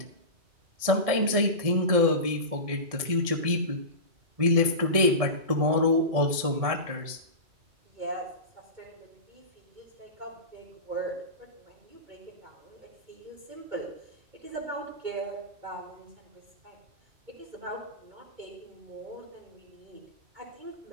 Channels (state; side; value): late; left; 1.7 ms